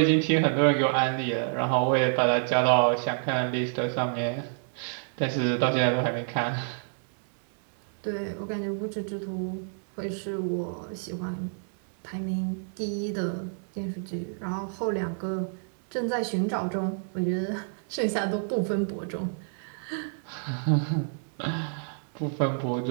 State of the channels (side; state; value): left; silent; digital silence